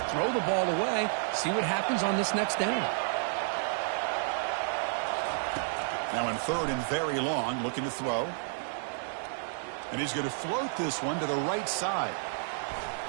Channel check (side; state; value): left; silent; digital silence